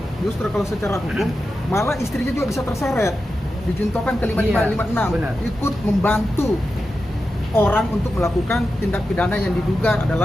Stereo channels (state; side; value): normal; both; correlation 0.90